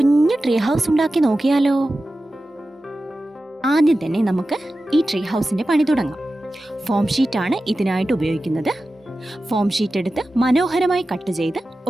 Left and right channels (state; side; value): normal; both; correlation 0.94